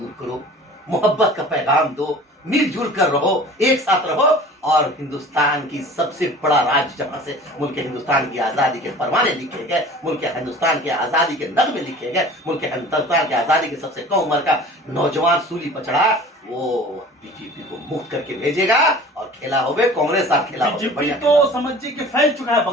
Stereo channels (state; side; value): normal; both; correlation 0.43